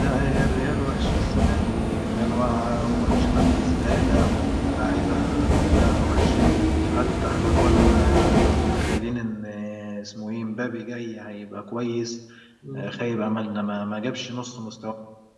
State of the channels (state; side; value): identical; both; correlation 1.00